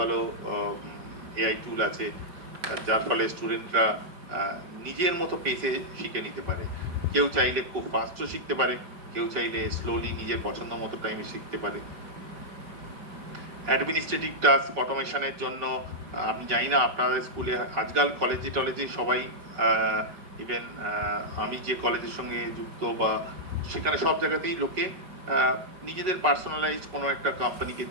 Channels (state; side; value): late; left; 5.4 ms